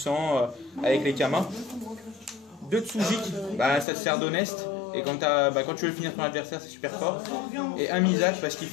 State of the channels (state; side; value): drops out; right; at 3.9 s